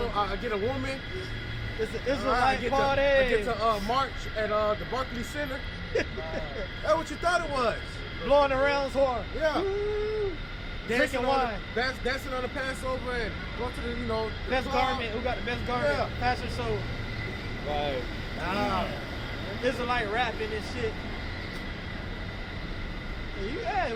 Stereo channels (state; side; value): identical; both; correlation 1.00